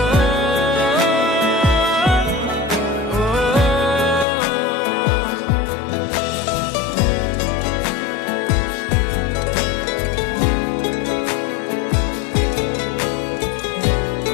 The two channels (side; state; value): right; drops out; at 4.2 s